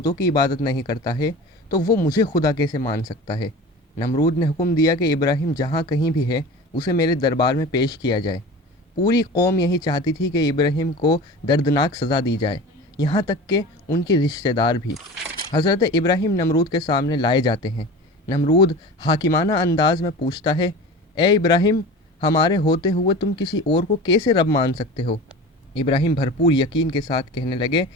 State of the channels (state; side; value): normal; both; correlation 0.35